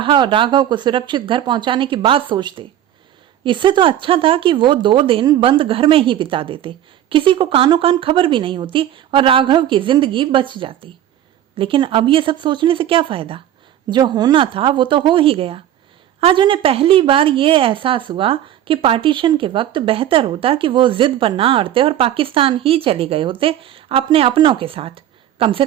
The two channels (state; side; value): quieter; left; 11.6 dB